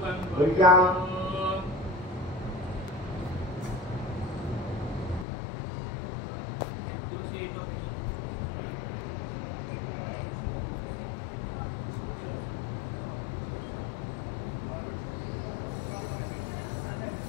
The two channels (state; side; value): drops out; right; at 5.2 s